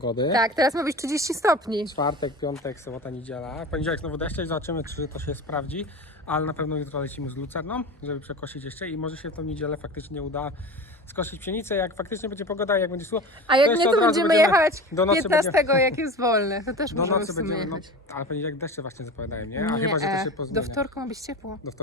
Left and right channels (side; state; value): both; normal; correlation 0.31